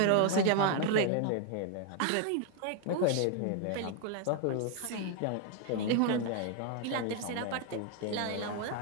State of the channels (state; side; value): different; both; correlation 0.01